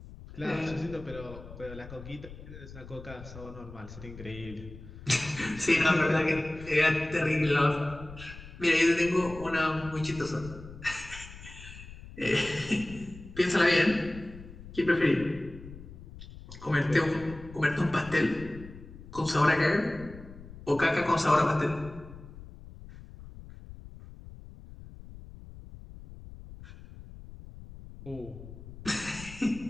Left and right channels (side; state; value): left; noise; rumble, 15 dB below the sound